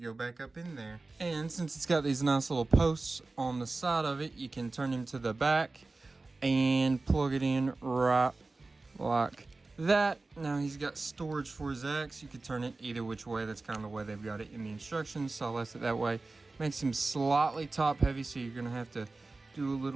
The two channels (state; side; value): quieter; left; 3.4 dB